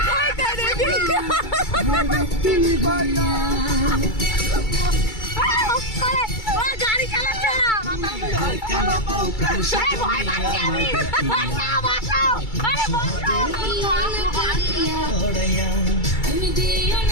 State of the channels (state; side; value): late; right; 2.3 ms